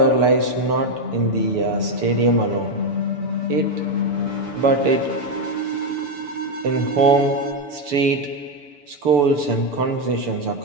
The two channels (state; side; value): late; left; 6.9 ms